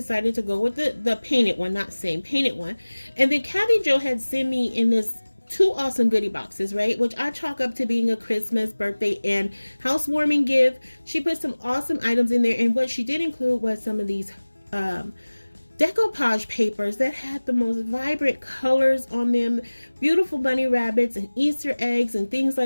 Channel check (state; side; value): inverted; both; correlation -1.00